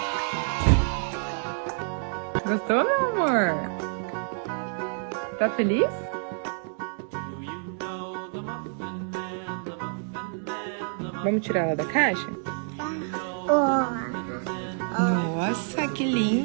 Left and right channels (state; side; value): silent; left; 60 dB below the other